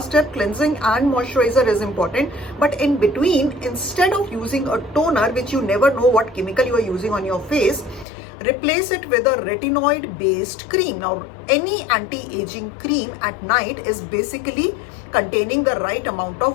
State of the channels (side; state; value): right; drops out; at 8.1 s